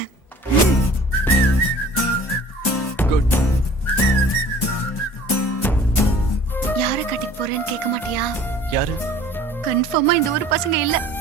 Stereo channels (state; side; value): normal; both; correlation 0.48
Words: குட். யார கட்டிக்க போறேன்னு கேட்க மாட்டியா? யாரு? கன்ஃபார்மா இந்த ஊர் பசங்க இல்ல.